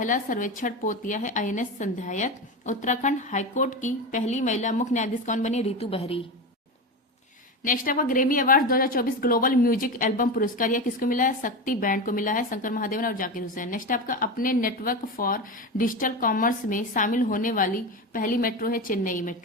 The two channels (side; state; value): both; normal; correlation 0.21